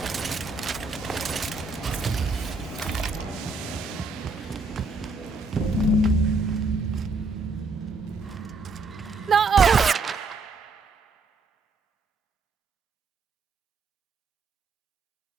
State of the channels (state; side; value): quieter; left; 3.8 dB